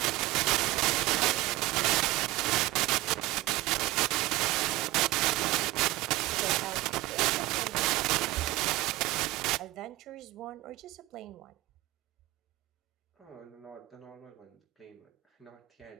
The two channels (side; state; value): left; quieter; 18.7 dB